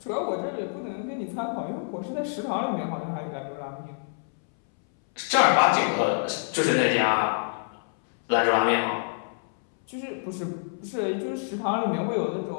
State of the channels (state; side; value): silent; right; 60 dB below the other